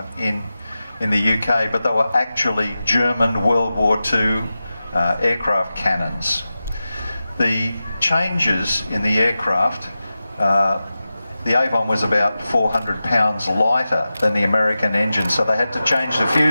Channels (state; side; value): inverted; both; correlation -0.94